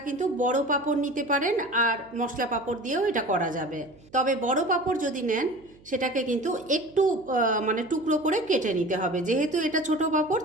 কিন্তু বড় পাঁপড় নিতে পারেন আর মশলা পাঁপড় দিয়েও এটা করা যাবে। তবে বড় পাঁপড় যদি নেন সেটাকে কিন্তু একটু টুকরো করে কেটে নিতে হবে। যেহেতু এটা ছোট পাঁপড়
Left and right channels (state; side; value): noise; right; hum, 26 dB below the sound